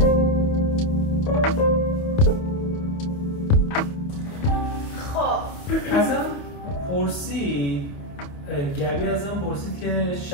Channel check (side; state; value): right; late; 28 ms